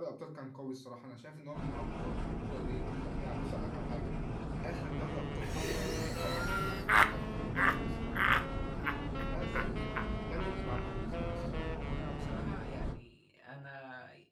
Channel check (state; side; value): identical; both; correlation 1.00